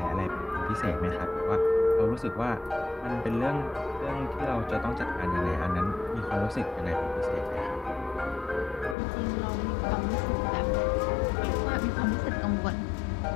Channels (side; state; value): right; drops out; at 9.0 s